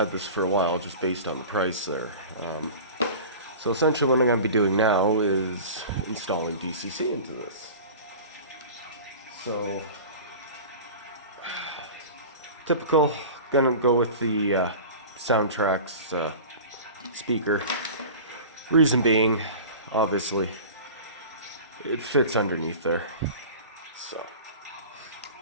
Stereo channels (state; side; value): inverted; both; correlation -0.37